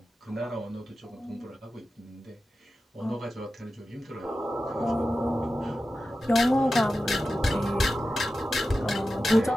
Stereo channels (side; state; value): both; normal; correlation 0.93